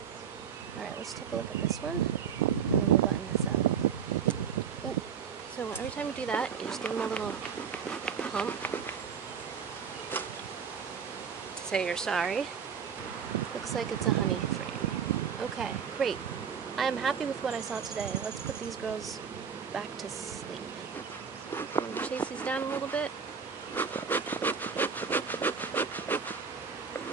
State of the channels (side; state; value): left; quieter; 6.9 dB